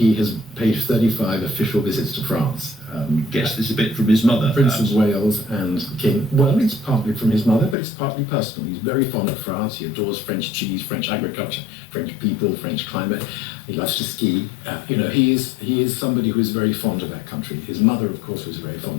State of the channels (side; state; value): right; drops out; at 7.8 s